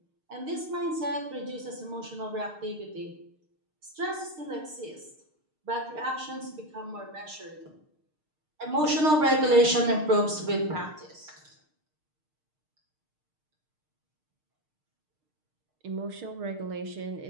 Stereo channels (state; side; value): late; left; 6.5 ms